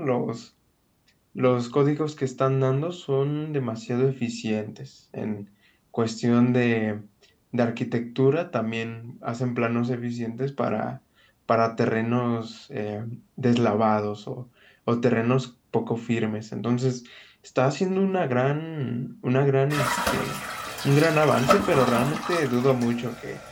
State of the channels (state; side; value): identical; both; correlation 1.00